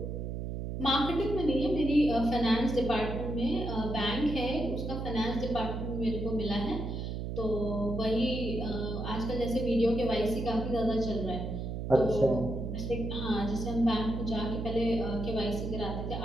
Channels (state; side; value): noise; right; hum, 4 dB below the sound